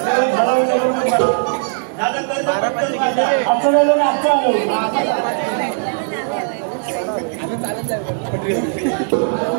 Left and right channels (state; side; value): silent; left; digital silence